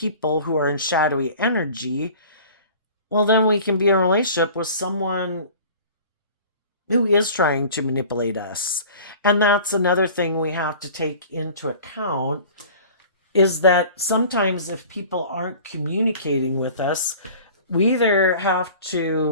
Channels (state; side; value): inverted; both; correlation -0.44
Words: who are in shadowy energy, well, then we can be in a relationship with someone who is trying to manipulate us. And that's another thing we have to take into account, is that sometimes if people aren't communicating with us, we either have